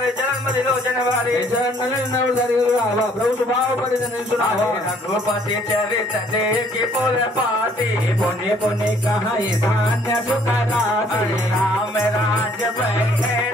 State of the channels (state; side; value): normal; both; correlation 0.61